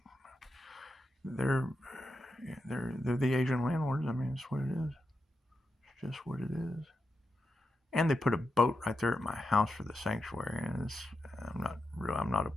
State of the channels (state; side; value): normal; both; correlation 0.87